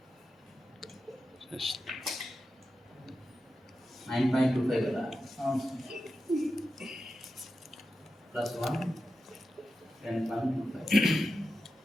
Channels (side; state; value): both; normal; correlation 0.91